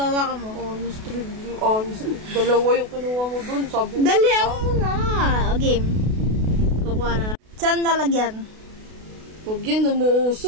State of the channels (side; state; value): left; late; 32 ms